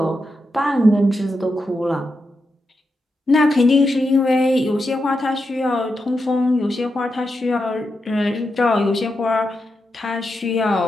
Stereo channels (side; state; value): both; normal; correlation 0.87